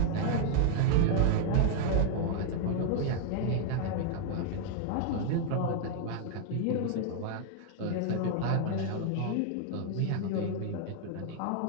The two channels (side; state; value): both; different; correlation 0.00